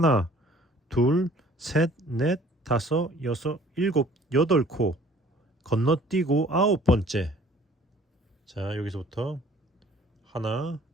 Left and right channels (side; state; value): both; normal; correlation 0.53